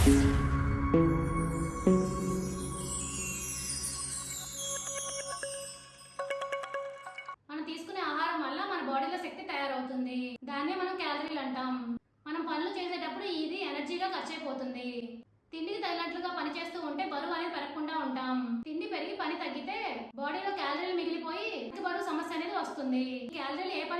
మనం తీసుకునే ఆహారం వల్ల మన బాడీలో శక్తి తయారవుతుంది. దాన్నే మనం క్యాలరీలు అంటాం. మనం పనులు చేసేటప్పుడు ఇది ఎనర్జీగా ఖర్చు అయిపోతుంది. తిండికి తగినట్లుగా పని చేస్తూ ఉంటే బరువు అనేది పెరగకుండా ఉంటాం. తిండి పెరిగి పని తగ్గితే బాడీలో క్యాలరీలు మిగిలిపోయి బరువు సమస్య అనేది వస్తుంది. క్యాలరీలు ఏ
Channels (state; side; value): identical; both; correlation 1.00